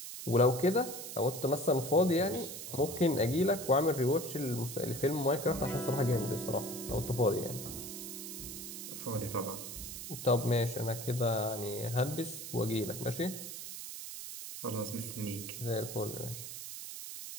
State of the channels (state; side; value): noise; right; hiss, 9 dB below the sound